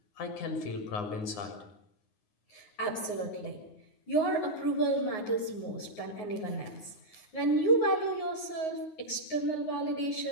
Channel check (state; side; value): late; right; 9.5 ms